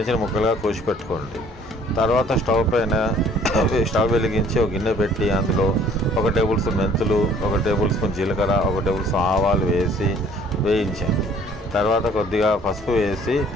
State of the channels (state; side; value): normal; both; correlation 0.56